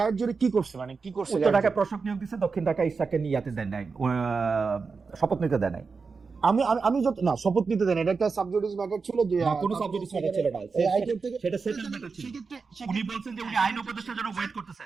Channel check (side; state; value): left; quieter; 4.8 dB